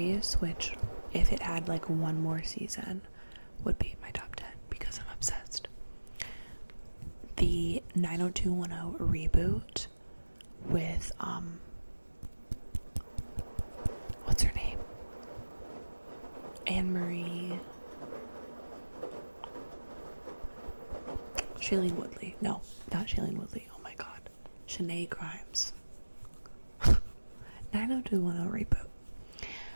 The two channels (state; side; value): inverted; both; correlation -1.00